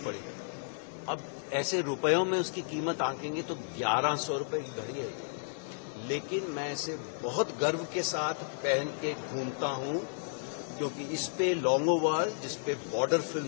पड़ी। अब ऐसे रुपयों में उसकी कीमत आंकेंगे तो 1100 रुपए की घड़ी है ये, लेकिन मैं इसे बहुत गर्व के साथ पहन के घूमता हूं क्योंकि इस पे लॉन्गो वॉर, जिस पे बॉर्डर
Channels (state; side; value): silent; right; digital silence